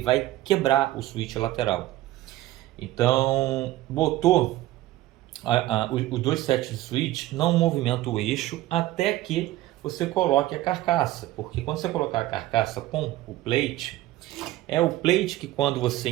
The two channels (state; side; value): quieter; left; 16.0 dB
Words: quebrar o switch lateral. Então, botou os dois sets de switch, não movimenta o eixo até que você coloque a carcaça, porque quando você colocar a carcaça com o plate, é o plate que quando você